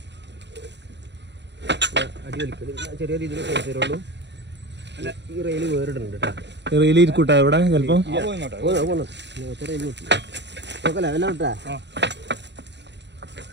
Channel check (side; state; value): left; late; 0.51 ms